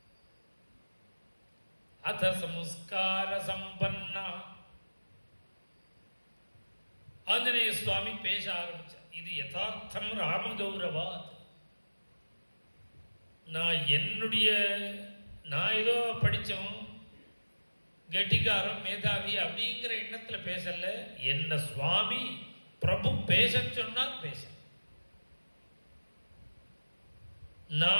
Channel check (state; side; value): inverted; both; correlation -1.00